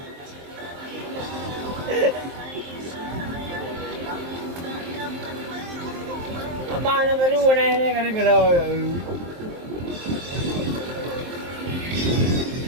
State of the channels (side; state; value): left; late; 23 ms